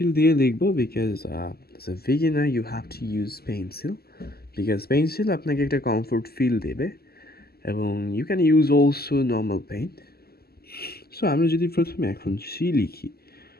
দিয়ে লিখবো because as a beginner you have to use pencil because pencil আপনাকে একটা কমফোর্ট ফিল দেবে এবং you can use also normal paint. So আমরা যদি প্রথমে এখন সি লিখি,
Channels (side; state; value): right; late; 0.46 ms